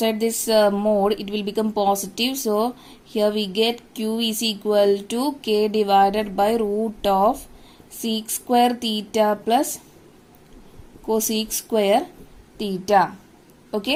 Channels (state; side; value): identical; both; correlation 1.00